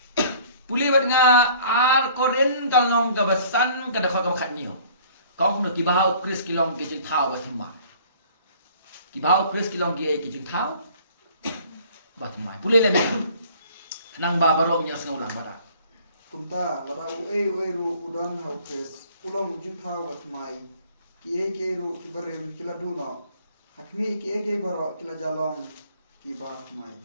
Puli bat nga ar koren kalong gabasan kada kha khat ni. Kong no ki bahau Chris kilong ke jin thau batem ma. Ki bahau Chris kilong ki ki jing thau bat mai pule le nang ba barong nya snau lang bara kumta wara ue ru udan hau Chris ulong jing thau wat mai ki ru ki barem kila duno hakmi ki baro kila jalong ki ba mai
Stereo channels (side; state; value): both; inverted; correlation -0.53